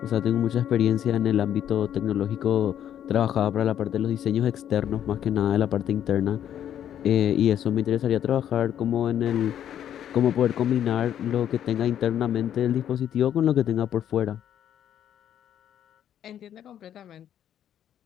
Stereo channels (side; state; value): right; quieter; 10.2 dB